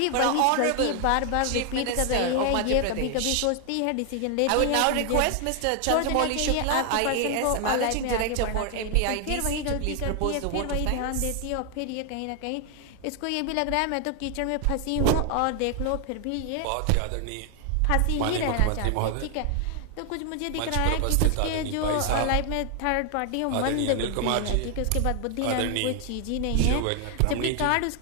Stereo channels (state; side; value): different; both; correlation 0.00